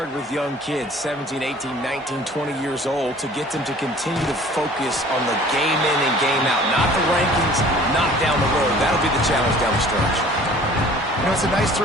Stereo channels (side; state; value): both; normal; correlation 0.49